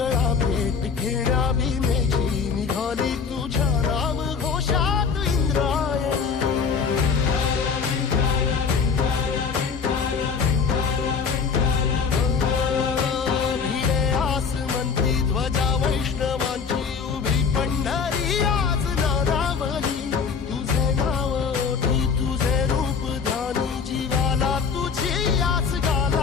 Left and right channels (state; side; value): quieter; right; 5.7 dB